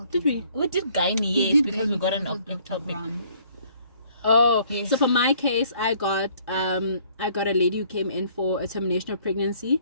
did we did gynae, yes, because we got an topic. Oh, yes. So for my case, I got a lady who came in for a termination of pregnancy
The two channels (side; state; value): both; inverted; correlation -0.61